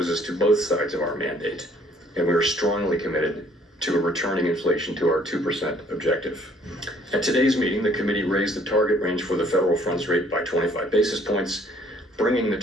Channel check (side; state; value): both; normal; correlation 0.60